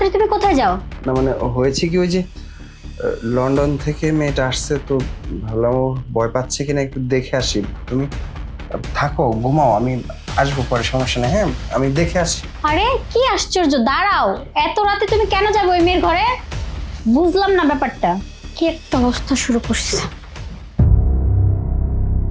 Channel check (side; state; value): both; identical; correlation 1.00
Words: তুমি কোথায় যাও? না মানে হয়েছে কি, ওই যে লন্ডন থেকে মেয়েটা আসছে, তো ভাবলাম ও ভয় পাচ্ছে কিনা একটু দেখে আসি। তুমি থাকো, ঘুমাও, আমি আসবো পরে, সমস্যা নেই। হ্যাঁ, আমি দেখে আসি। আরে কি আশ্চর্য, দাঁড়াও, এত রাতে তুমি কেন যাবে ওই মেয়ের ঘরে? বুঝলাম না ব্যাপারটা, কি একটা অবস্থা শুরু করছে।